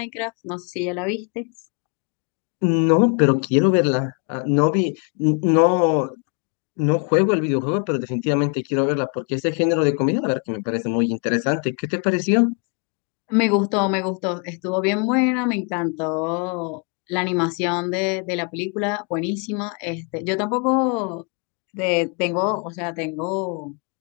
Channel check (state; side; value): quieter; right; 37.2 dB